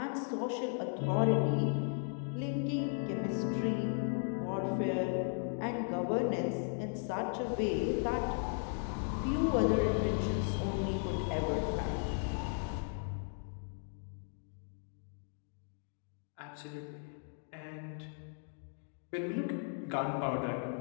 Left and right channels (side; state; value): right; silent; 54 dB below the other